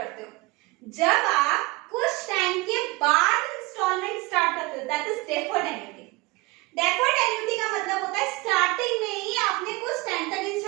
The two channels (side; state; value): left; quieter; 23.3 dB